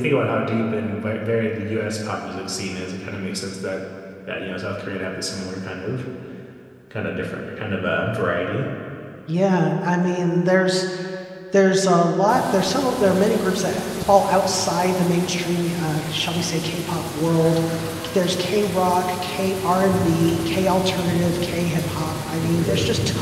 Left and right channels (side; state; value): both; identical; correlation 1.00